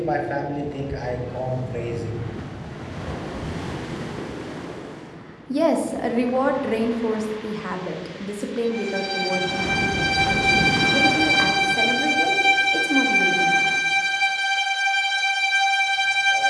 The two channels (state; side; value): identical; both; correlation 1.00